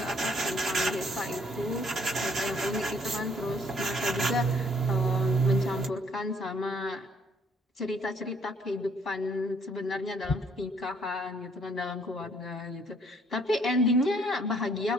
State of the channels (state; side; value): normal; both; correlation 0.63